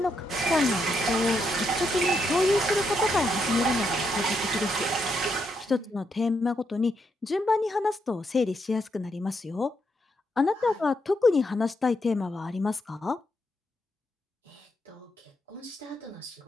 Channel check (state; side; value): normal; both; correlation 0.79